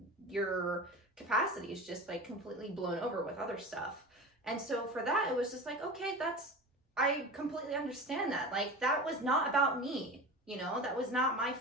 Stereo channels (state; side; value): normal; both; correlation 0.32